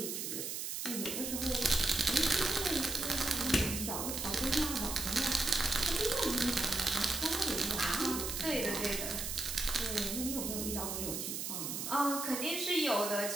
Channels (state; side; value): noise; right; hiss, 4 dB below the sound